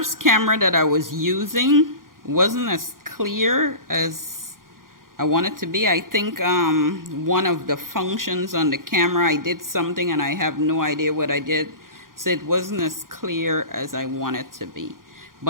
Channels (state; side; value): late; left; 0.91 ms